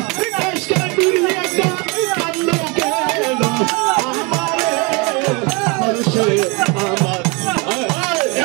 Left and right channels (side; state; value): left; quieter; 29.3 dB